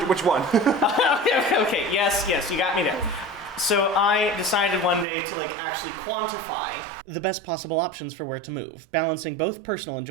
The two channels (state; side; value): drops out; left; at 5.1 s